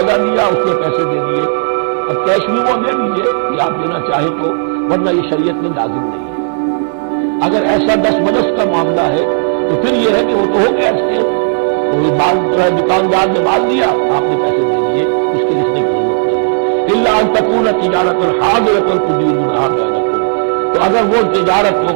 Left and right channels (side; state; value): left; silent; digital silence